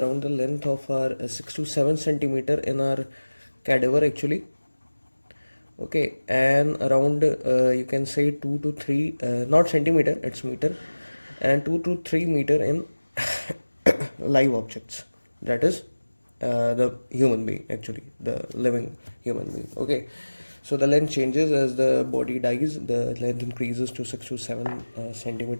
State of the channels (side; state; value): both; inverted; correlation -1.00